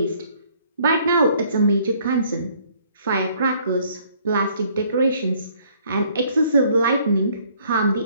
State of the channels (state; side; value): inverted; both; correlation -0.62